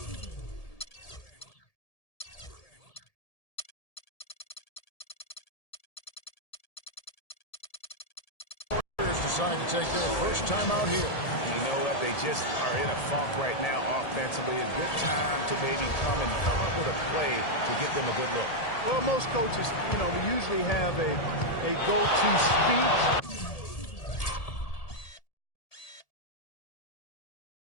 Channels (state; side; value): late; right; 1.7 ms